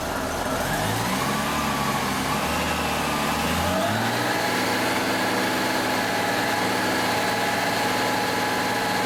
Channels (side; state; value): both; identical; correlation 1.00